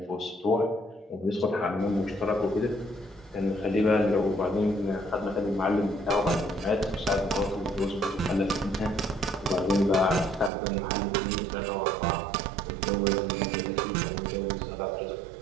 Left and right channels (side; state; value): left; drops out; at 10.5 s